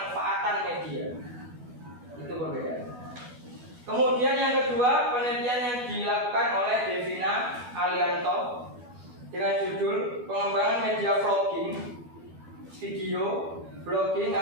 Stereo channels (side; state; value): left; late; 12 ms